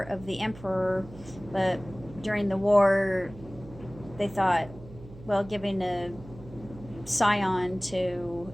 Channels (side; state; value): right; noise; hum, 17 dB below the sound